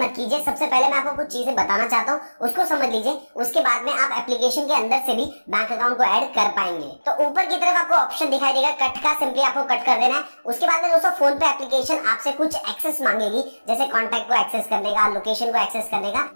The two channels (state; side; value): inverted; both; correlation -1.00